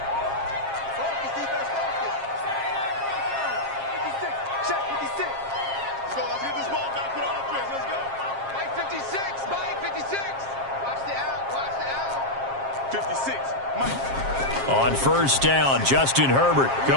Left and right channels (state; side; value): late; left; 7.4 ms